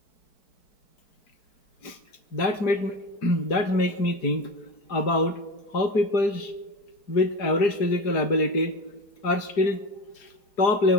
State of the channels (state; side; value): late; right; 4.9 ms